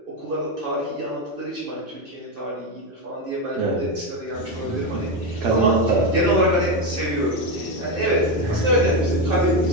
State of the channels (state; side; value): normal; both; correlation 0.11